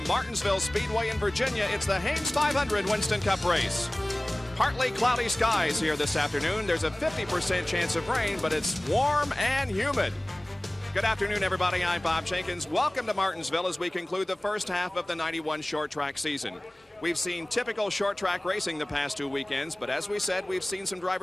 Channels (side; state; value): both; normal; correlation 0.98